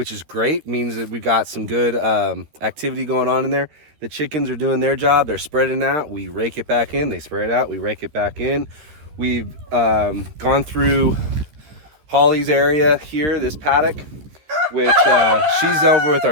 is great. Means that we've got some good activity going on in there. The chickens are doing their job. They're spreading out. We rake it back in. They spread out. We rake it back in. We've gone through Holly's area here, this paddock, which she's over with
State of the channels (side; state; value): left; late; 13 ms